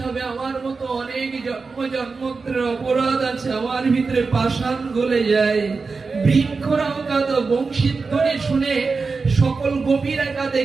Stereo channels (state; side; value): quieter; left; 4.4 dB